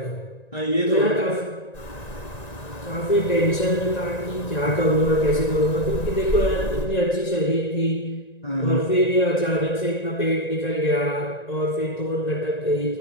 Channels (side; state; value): right; late; 1.9 ms